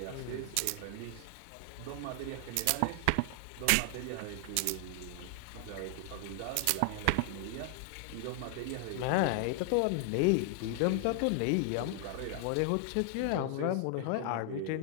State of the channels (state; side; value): different; both; correlation 0.00